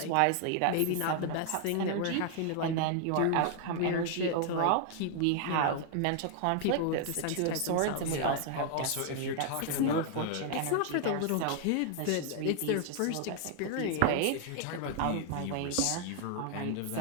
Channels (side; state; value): both; different; correlation 0.00